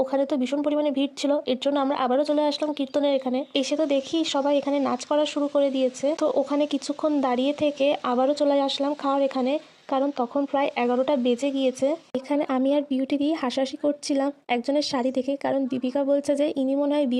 ওখানে তো ভীষণ পরিমাণে ভিড় ছিল, এর জন্য আমরা আবারও চলে আসলাম কীর্তনের এখানে। এসে তো দেখি সবাই এখানে নাচ করা শুরু করে দিয়েছে। তো ওখানে কিছুক্ষণ দাঁড়িয়ে থেকে আবারও চলে আসলাম খাওয়ার এখানে, কারণ তখন প্রায় 11টা বেজে গিয়েছে। এখানে আমি আর বিউটি দিয়ে হাসাহাসি করছিলাম একজনের শাড়ি দেখে, কারণ দীপিকা বলছে যে ইনি মনে হয়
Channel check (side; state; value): both; identical; correlation 1.00